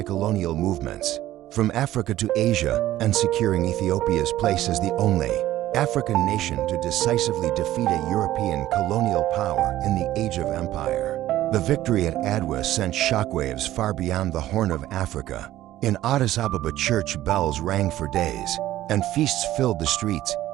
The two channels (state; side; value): quieter; left; 14.3 dB